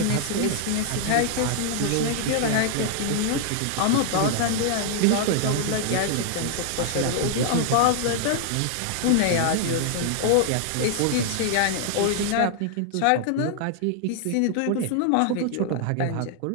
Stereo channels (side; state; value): both; different; correlation 0.00